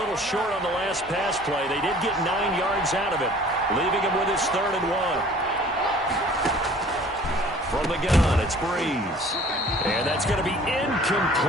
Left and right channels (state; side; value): normal; both; correlation 0.50